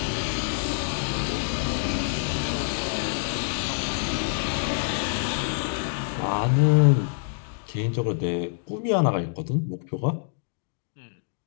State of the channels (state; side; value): silent; right; digital silence